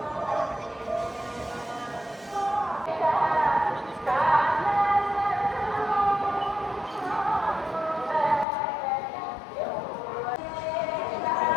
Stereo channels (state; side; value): drops out; right; at 8.5 s